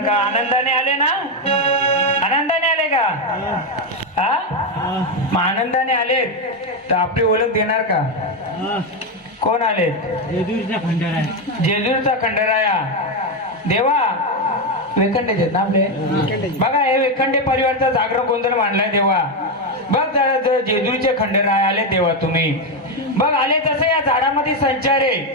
का? आनंदाने आले ना? आनंदाने आले का? हा मग आनंदाने आले तर आपली ओळख देणार का? कोण आले? जेजूरचा खंडराया. जेजूरचा खंडराया. देवा वेखंडे ना आपले. बघा हे वेखंडे परिवारचा जागरण गोंधळ मांडलाय देवा. बघ जरा जेजूरचे खंडराया आले देवा तुम्ही. बघ आले तसं या झाडामध्ये संचार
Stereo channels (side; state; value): both; normal; correlation 0.08